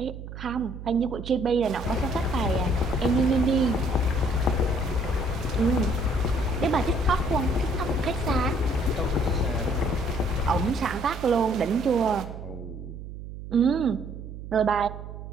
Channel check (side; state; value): right; noise; hum, 11 dB below the sound